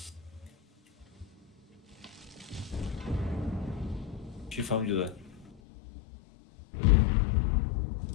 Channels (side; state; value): right; drops out; at 5.6 s